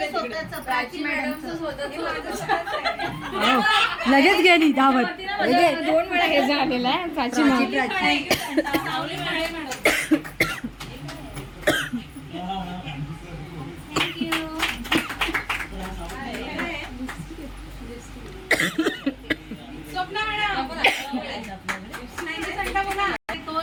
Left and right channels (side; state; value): both; identical; correlation 1.00